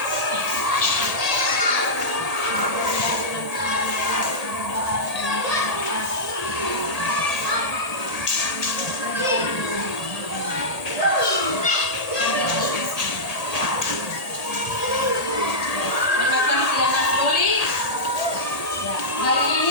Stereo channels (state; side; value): late; right; 1.8 ms